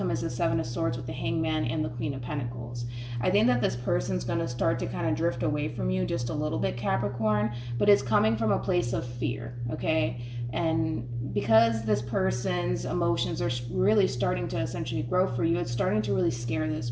is the Seven of Swords with the Hangman and the Queen of Pentacles. I think that this person's going to start to kind of drift away from you just a little bit, Capricorn, but it's coming from a place of fear, okay? And because this person's emotions are really starting to essentially grow for you, it's starting to really scare this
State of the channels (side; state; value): both; identical; correlation 1.00